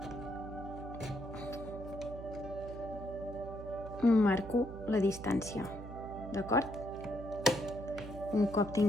marco la distància, d'acord? Un cop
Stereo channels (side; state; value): right; noise; hum, 11 dB below the sound